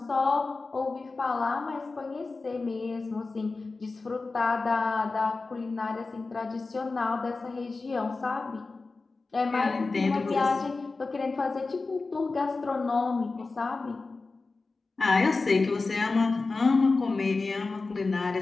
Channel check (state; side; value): quieter; right; 3.8 dB